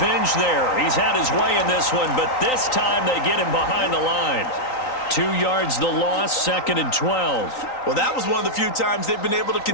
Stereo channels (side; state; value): right; late; 3.9 ms